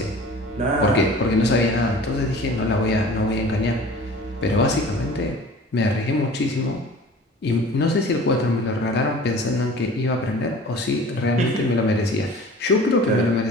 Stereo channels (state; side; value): normal; both; correlation 0.44